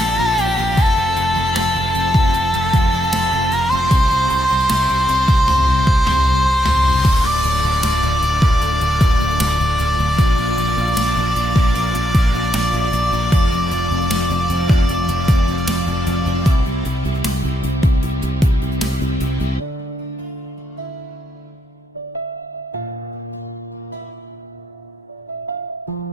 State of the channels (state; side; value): normal; both; correlation 0.79